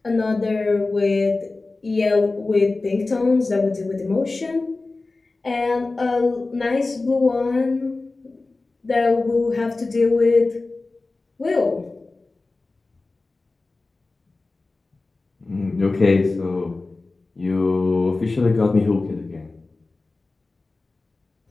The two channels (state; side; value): quieter; right; 3.4 dB